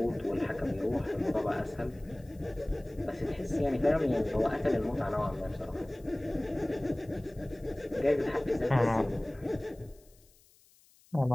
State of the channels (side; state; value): left; noise; hiss, 29 dB below the sound